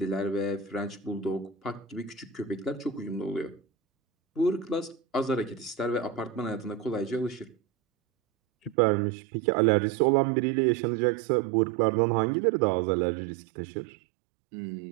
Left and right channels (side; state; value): left; drops out; at 8.8 s